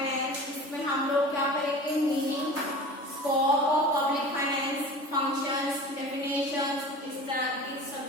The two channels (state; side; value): late; right; 3.5 ms